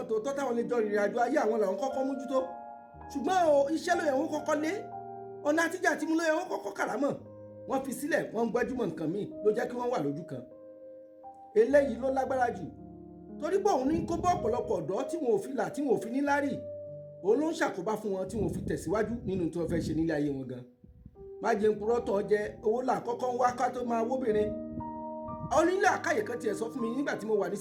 tòótọ́ táwọn lè jọ ìrìn àjò ayé àwọn làwọn kọ́kọ́ mójútó. Ṣùgbọ́n o, iṣẹ́ ló yẹ wọ́n kọ́kọ́ lé. ọ̀nà àtijọ́ àti mú ló yẹ wọ́n kọ́kọ́ kàrámọ̀ wọ́n fi sílẹ̀ wọ́n ń gbájúmọ̀ nǹkan míì ló jẹ́ kí wọ́n wà lójú kan. eléyìí ló lágbára jù torí pé òun ní kó bọ́ ọ̀pọ̀lọpọ̀ ọ̀dọ́ tí wọn ò fi là tí wọn ò fi ní lárí òun ló ń ṣàkóbá fún wọn tí wọn ò fi tẹ̀síwájú nínú tí wọ́n fẹ́ ṣe nílé ayé wọn gan. má jẹ́ ń purọ́ tọ́ jẹ owó là kọ́kọ́ ń wá ká tó máa wóbìnrin. onílé àkáyè kan tiẹ̀ sọ fún mi nígbà tí mo wà ní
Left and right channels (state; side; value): identical; both; correlation 1.00